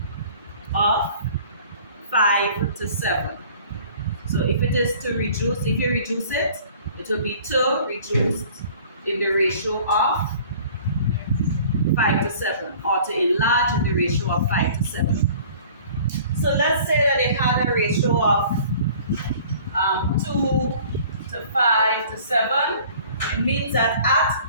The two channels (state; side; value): inverted; both; correlation -0.49